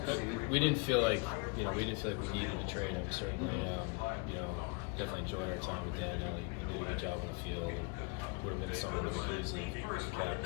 We didn't feel like we needed a trade. I certainly, definitely enjoyed our time with Daniel. He did a good job on the field, and would have been someone that we could easily have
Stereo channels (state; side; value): quieter; right; 31.7 dB